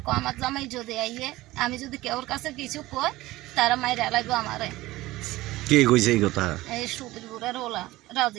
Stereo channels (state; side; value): quieter; left; 18.0 dB